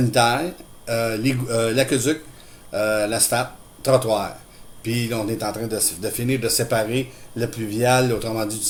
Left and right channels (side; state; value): both; identical; correlation 1.00